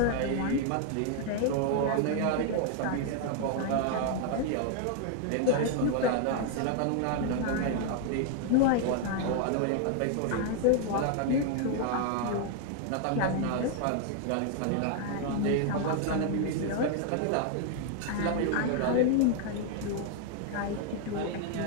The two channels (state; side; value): different; both; correlation 0.00